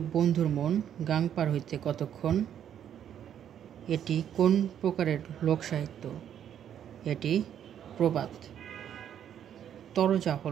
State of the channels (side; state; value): left; quieter; 9.6 dB